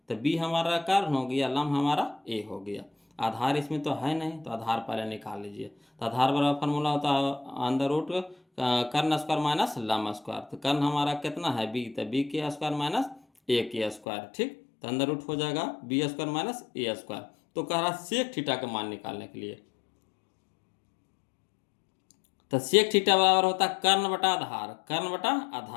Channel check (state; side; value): drops out; right; at 14.0 s